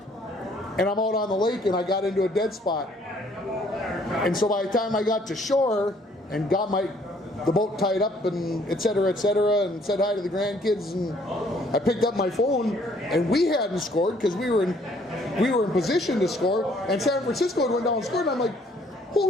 and I'm out on the lake, and I got into a dead spot. And so by the time I got to shore and got the boat tied up and et cetera, and said hi to the grandkids, and I picked up my phone, and we hadn't scored because we were in position to score, and San Francisco had went down and scored, and I'm like,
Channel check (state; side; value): normal; both; correlation 0.62